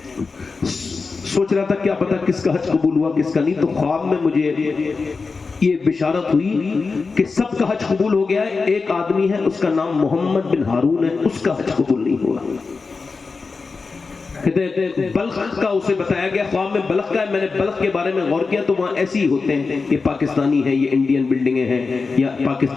سوچ رہا تھا کیا پتا کس کا حج قبول ہوا کس کا نہیں, تو خواب میں مجھے یہ بشارت ہوئی کہ سب کا حج قبول ہو گیا ہے, ایک آدمی ہے اس کا نام محمد بن ہارون ہے, اس کا حج قبول نہیں ہوا. بلخ کا اسے بتایا گیا, خواب میں بلخ کا ہے. میں نے بلخ کے بارے میں غور کیا تو وہاں ایسے ہی ہوتے ہیں, یہ پاکستانی ہیں, یہ انڈین بلڈنگیں ہیں, یا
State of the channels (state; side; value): quieter; right; 4.4 dB